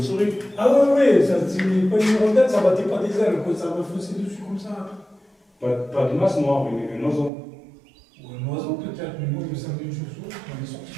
Ah ouais, ça, c'est pas une rondelle, ça battait pas des ailes, quoi. Ça m'a faussé dessus comme ça. Pas de masse noire, un oiseau. Ou un oiseau, peut-être, mais moi, il me semblait une chauve-souris. Elle est sortie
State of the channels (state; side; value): drops out; left; at 7.3 s